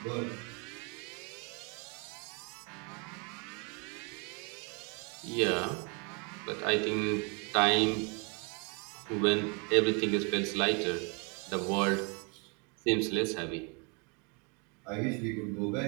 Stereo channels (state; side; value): quieter; left; 33.2 dB